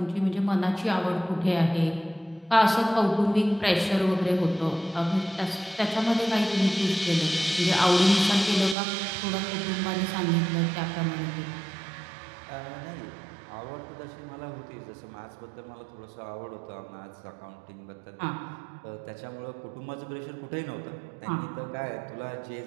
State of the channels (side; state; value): left; drops out; at 8.8 s